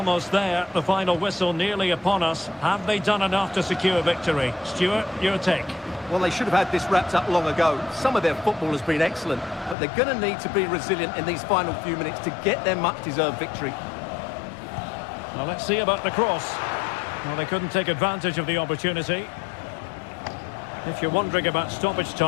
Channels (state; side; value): drops out; right; at 9.8 s